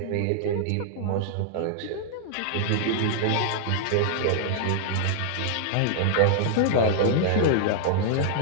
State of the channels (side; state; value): both; different; correlation -0.01